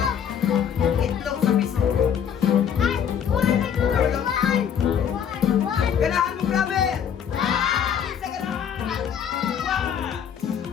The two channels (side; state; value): right; quieter; 8.3 dB